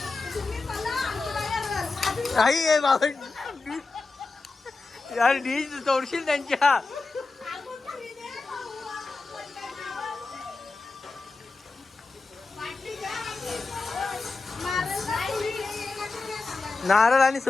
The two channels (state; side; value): quieter; right; 3.8 dB